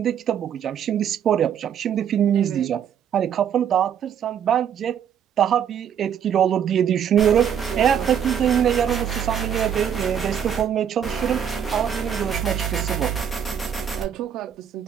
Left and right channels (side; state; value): left; quieter; 8.6 dB